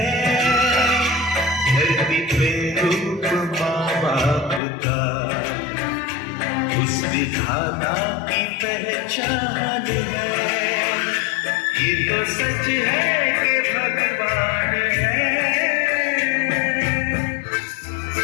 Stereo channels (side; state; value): right; drops out; at 4.6 s